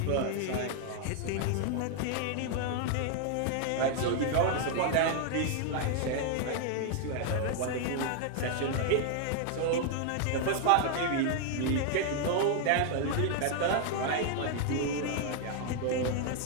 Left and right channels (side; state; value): both; different; correlation 0.00